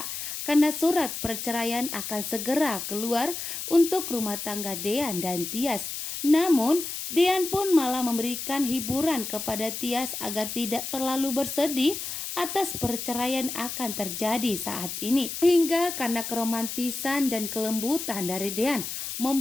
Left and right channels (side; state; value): left; noise; hiss, 6 dB below the sound